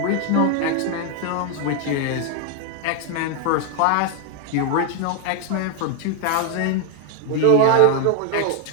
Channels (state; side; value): different; both; correlation 0.01